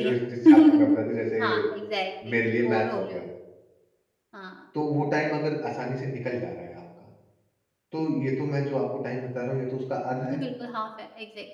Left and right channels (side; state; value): both; identical; correlation 1.00